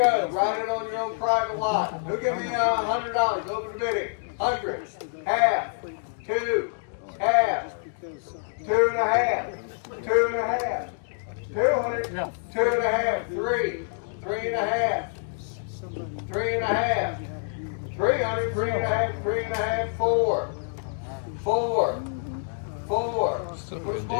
Write it on your own private lot. Who give me $100? Open the bidding. 100, half, 2, half, 2.5, 2.5, 200, 2.5, 3, 3.5, 3.5, 300, 3.5, 3.5, 4, 4, 4. Which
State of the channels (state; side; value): silent; right; digital silence